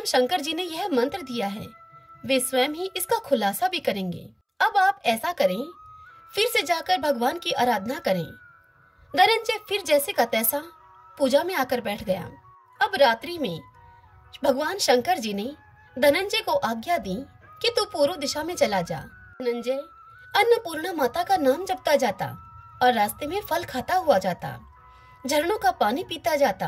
शंकर जी ने यह मंत्र दिया है, वे स्वयं ही इसका खुलासा भी करेंगे। अब आप ऐसा करें, फिर से जाकर भगवान की आराधना करें। धनंजय फिर जैसे का तैसा पूजा में आकर बैठ गया। अब रात्रि में भगवान शंकर जी ने धनंजय को आज्ञा दी कि तू पूर्व दिशा में चला जा। धनंजय अन्नपूर्णा माता का नाम जपता जाता और रास्ते में फल खाता हुआ जाता, झरनों का पानी पीता जाता।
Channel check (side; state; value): both; identical; correlation 1.00